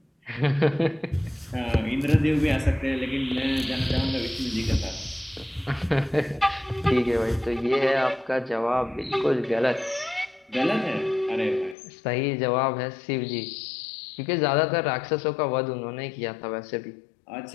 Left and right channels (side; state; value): right; drops out; at 11.8 s